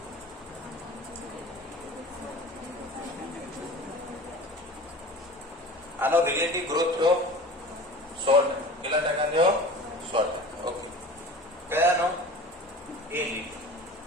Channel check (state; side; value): normal; both; correlation 0.38